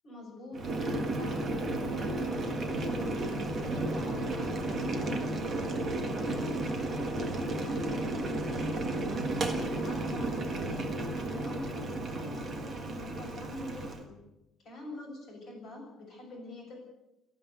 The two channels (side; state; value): both; normal; correlation 0.64